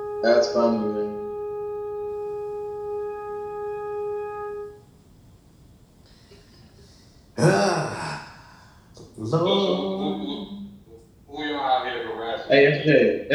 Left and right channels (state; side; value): identical; both; correlation 1.00